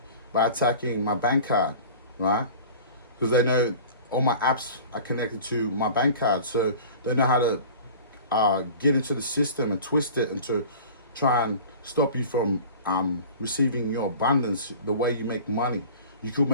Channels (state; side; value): inverted; both; correlation -0.41